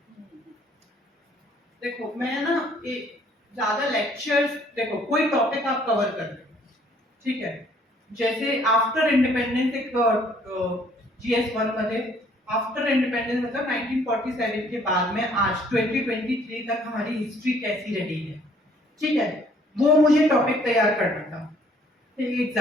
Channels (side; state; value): both; normal; correlation 0.61